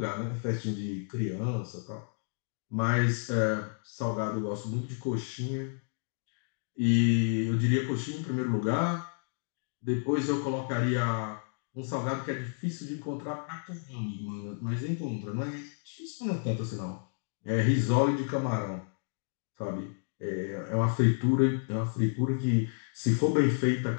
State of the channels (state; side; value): silent; right; digital silence